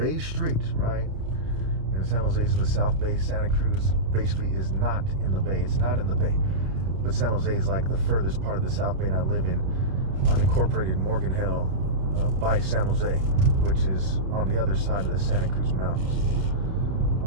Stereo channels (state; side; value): late; left; 30 ms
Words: Street, right? And San Jose is in the South Bay. Santa Cruz basically is not in the Bay. It's not in the Bay. But San Jose is like the furthest part of the South Bay, and I live in unincorporated Morgan Hill by San Jose, which is on the other side of the Santa Cruz Mountains.